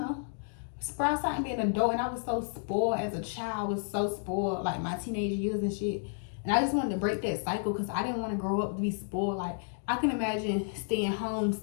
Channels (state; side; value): silent; right; digital silence